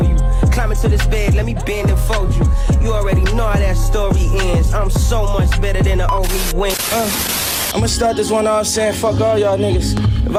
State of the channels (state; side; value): identical; both; correlation 1.00